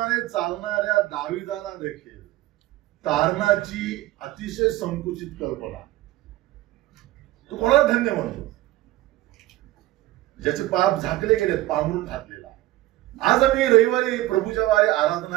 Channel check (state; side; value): quieter; left; 16.7 dB